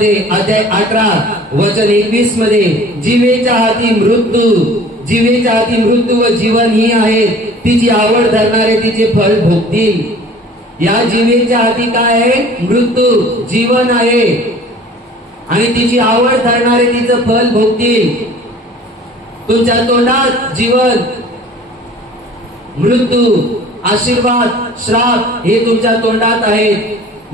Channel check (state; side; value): normal; both; correlation 0.47